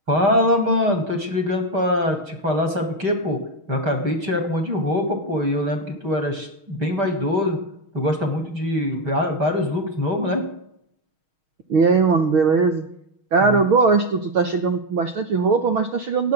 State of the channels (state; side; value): late; left; 6.4 ms